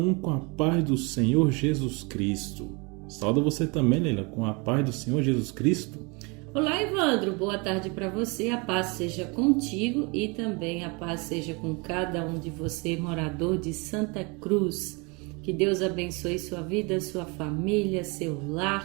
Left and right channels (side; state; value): left; quieter; 29.6 dB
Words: com a paz do Senhor Jesus Cristo. Saúdo você também, Leila, com a paz do Senhor Jesus Cristo. Olá, Evandro. Boa tarde para você. A paz seja contigo e também a paz seja com cada um de você, morador de Santa Cruz. Que Deus abençoe sua vida, sua família, seu